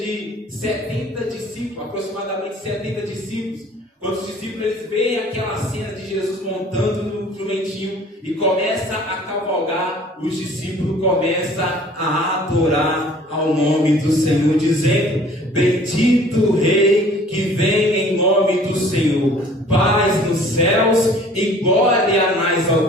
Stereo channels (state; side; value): normal; both; correlation 0.51